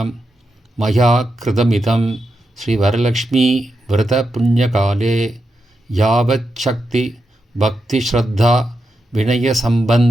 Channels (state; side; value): normal; both; correlation 0.87